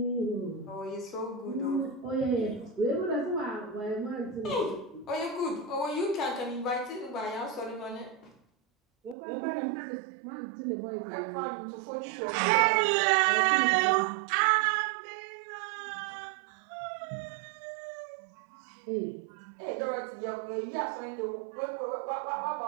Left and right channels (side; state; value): left; drops out; at 9.2 s